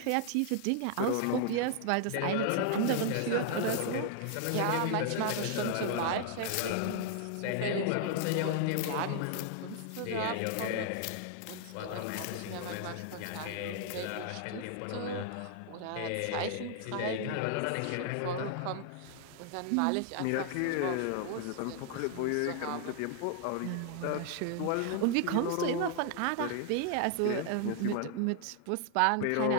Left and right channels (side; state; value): both; different; correlation 0.00